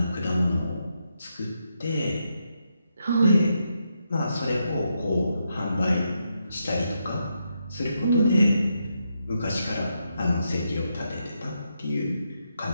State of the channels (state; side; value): inverted; both; correlation -0.82